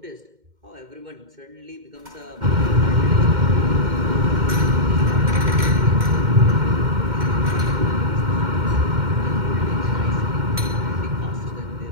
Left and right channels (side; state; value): left; late; 2.1 ms